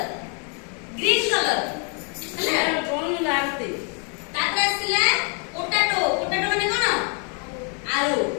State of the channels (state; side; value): quieter; right; 38.6 dB